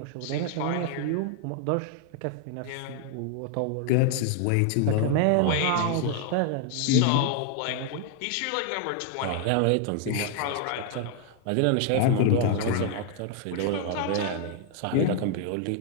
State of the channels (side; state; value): both; different; correlation 0.00